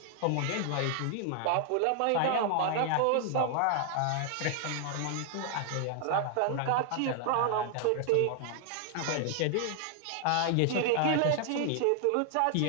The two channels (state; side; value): different; both; correlation 0.00